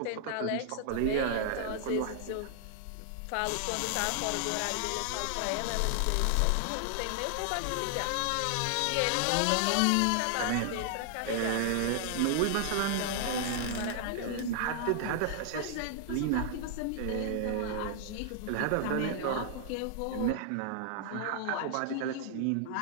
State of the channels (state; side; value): different; both; correlation 0.00